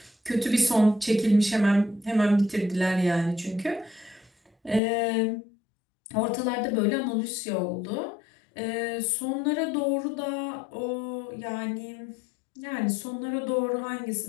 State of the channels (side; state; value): right; drops out; at 4.8 s